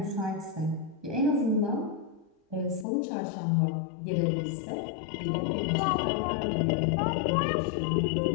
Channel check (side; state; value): right; drops out; at 2.9 s